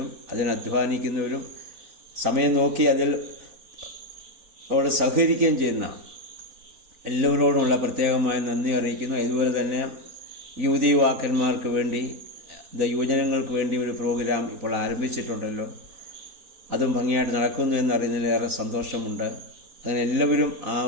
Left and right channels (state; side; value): late; left; 4.0 ms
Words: അതിന് അധ്വാനിക്കുന്നവരും സമയം നോക്കി അതിൽ അവിടെ സഹകരിക്കുകയും ചെയ്യുന്ന എല്ലാവരോടുമുള്ള പ്രത്യേകമായ നന്ദി അറിയിക്കുന്നു. ഇതുപോലെ തന്നെ യുവതീവാക്കന്മാർക്ക് വേണ്ടി യുവജനങ്ങൾക്ക് വേണ്ടി ഒരു പ്രോഗ്രാം ഇപ്പോൾ ആരംഭിച്ചിട്ടുണ്ടല്ലോ. അതും ഭംഗിയായിട്ട് നടക്കുന്നു എന്നറിയുന്നതിൽ ഏറെ സന്തോഷമുണ്ട്. അങ്ങനെ എല്ലാവരും ആ